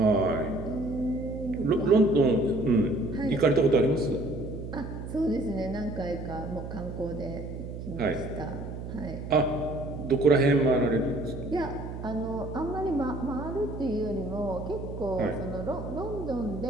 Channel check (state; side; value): noise; right; hum, 8 dB below the sound